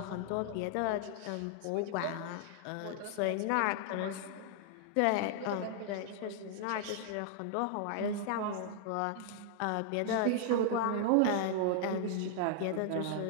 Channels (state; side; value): different; both; correlation 0.00